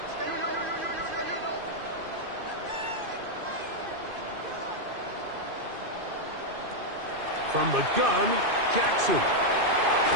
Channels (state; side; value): late; left; 2.5 ms